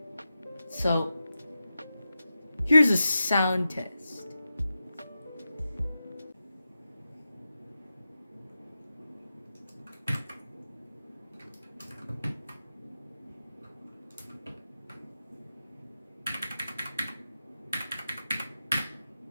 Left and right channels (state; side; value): inverted; both; correlation -0.91